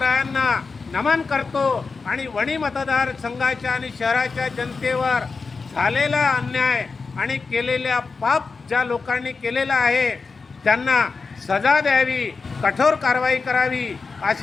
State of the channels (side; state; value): right; quieter; 4.5 dB